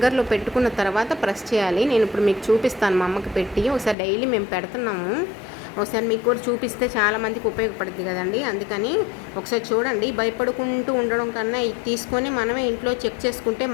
పెట్టుకున్న తర్వాత ప్రెస్ చేయాలి. నేను ఇప్పుడు మీకు చూపిస్తాను, మా అమ్మకి పెట్టి. ఒకసారి డైలీ మేము పెడుతున్నాము, ఒకసారి మీకు కూడా చూపిస్తే చాలామందికి ఉపయోగపడుతుంది కదండి. అందుకని ఒకసారి చూడండి. భయపడుకుంటూ ఉండడం కన్నా ఇది తీసుకొని మనమే ఇంట్లో చెక్ చేసుకుంటే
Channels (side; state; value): right; drops out; at 4.0 s